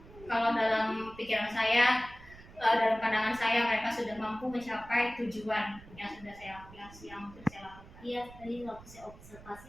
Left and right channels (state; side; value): noise; right; rumble, 19 dB below the sound